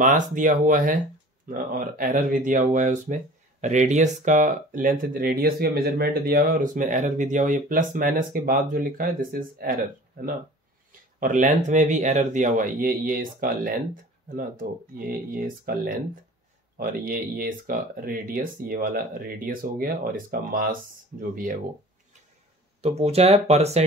दिया हुआ है और एरर भी दिया हुआ है उसमें। रेडियस का लेंथ, रेडियस का मेजरमेंट दिया हुआ है और उसमें एरर भी दिया हुआ है। ये प्लस माइनस के बाद जो लिखा है दिस इज एरर, है ना। और लेंथ में भी एरर दिया हुआ है, ये इसका लेंथ, है ना। तो ये इसका लेंथ और ये इसका रेडियस, ये वाला रेडियस हो गया, और इसका मास जो भी है वो। तो पूछा है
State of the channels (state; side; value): normal; both; correlation 0.44